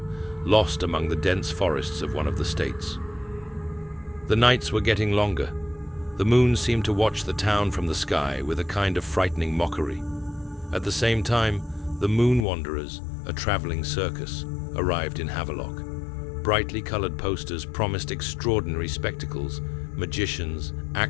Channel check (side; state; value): right; drops out; at 12.5 s